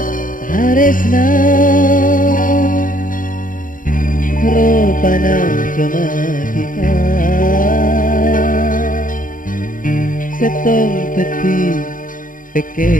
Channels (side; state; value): right; late; 0.39 ms